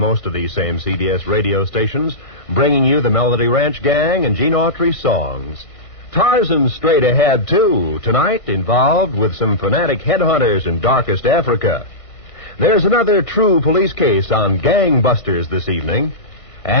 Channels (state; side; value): late; right; 1.5 ms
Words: of these same CBS radio stations, bringing you the Melody Ranch Gang and Gene Autry songs. Tarzan's straight ahead, too, tonight involved with some fanatic headhunters in darkest Africa. There's another true police case on gangbusters this evening.